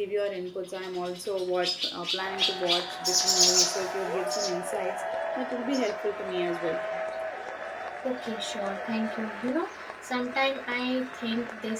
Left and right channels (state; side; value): identical; both; correlation 1.00